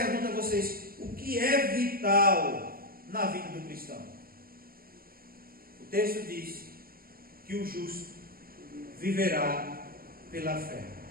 a vocês, o que é vital na vida do cristão? O texto diz que o justo viverá pela fé.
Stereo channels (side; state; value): left; late; 0.43 ms